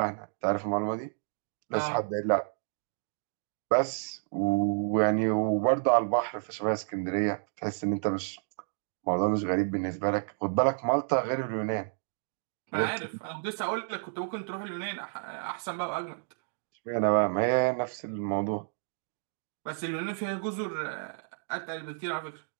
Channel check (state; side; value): silent; left; digital silence